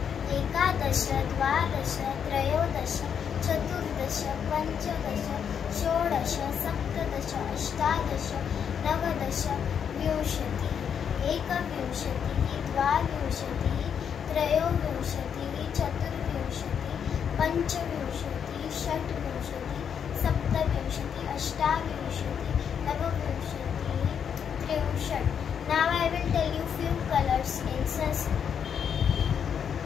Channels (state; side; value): quieter; right; 7.7 dB